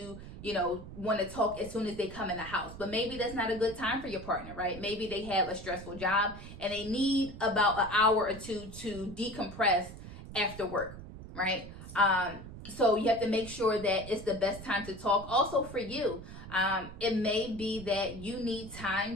want to talk as soon as they come in the house, but maybe that's not a good time for your partner, right? Maybe they have a stressful job and they need about an hour or 2 to decompress after work, right? So you have to make sure that it's the best time to talk. Also for you, it may be that you need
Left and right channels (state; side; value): noise; right; rumble, 13 dB below the sound